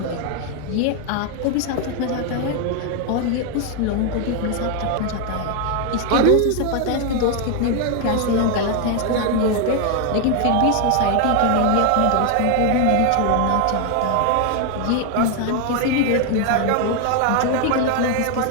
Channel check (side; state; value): both; different; correlation 0.00